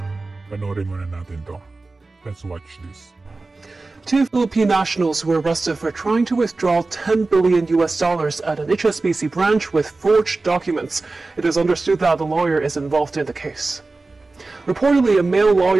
Panoorin muna natin to. Let's watch this. Two Philippine nationals were arrested for trying to withdraw 10 billion US dollars at an HSBC branch with forged documents. It is understood that the lawyer is involved in the case. Reportedly, a male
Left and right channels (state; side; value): quieter; left; 3.5 dB